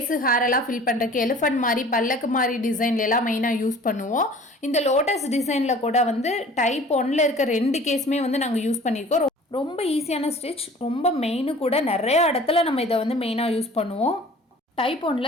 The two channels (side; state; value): both; normal; correlation 0.47